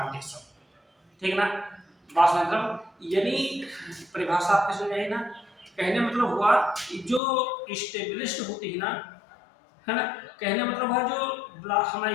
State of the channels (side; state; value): right; drops out; at 7.2 s